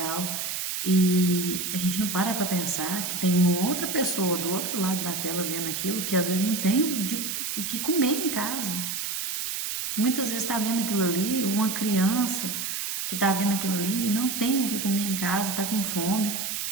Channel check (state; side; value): noise; right; hiss, 3 dB below the sound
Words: e a gente não para pensar que tem uma outra pessoa do outro lado da tela vendo aquilo, que às vezes não tem o que comer em casa. Muitas vezes está vendo aquilo ali, uma criança que está vendo aquilo ali não tem o que comer em casa, está com fome,